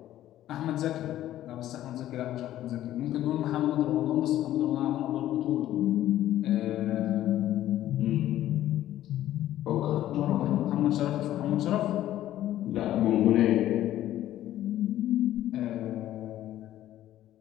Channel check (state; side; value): quieter; right; 13.2 dB